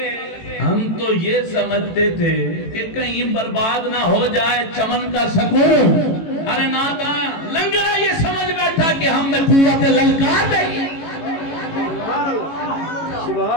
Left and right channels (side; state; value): right; late; 18 ms